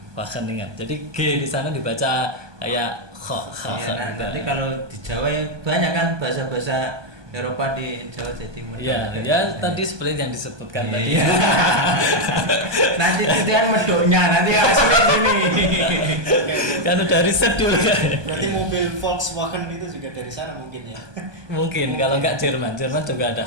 Wageningen. Jadi G di sana dibaca kayak kh. Iya, nanti kalau di Jawa banyak kan bahasa-bahasa Eropa di Jawa Timur. Iya, ya tadi seperti yang disebutkan tadi. Nanti itu kan medoknya, nanti hasilnya gini. Kan udah riset dulu kan. Berarti mobil Volkswagen itu juga dari sana mungkin ya. Mungkin kalau enggak Jerman juga ada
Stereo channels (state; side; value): late; left; 1.2 ms